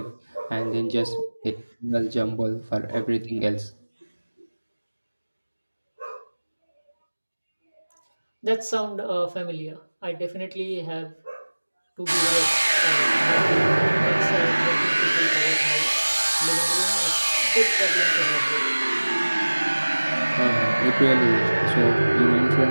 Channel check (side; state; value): both; inverted; correlation -1.00